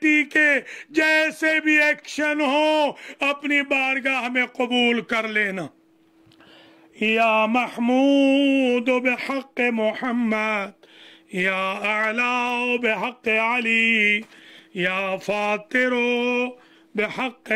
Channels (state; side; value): identical; both; correlation 1.00